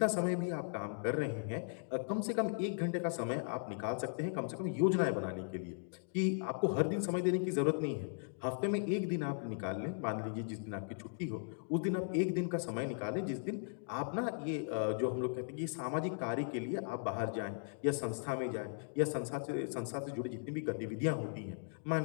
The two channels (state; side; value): silent; right; digital silence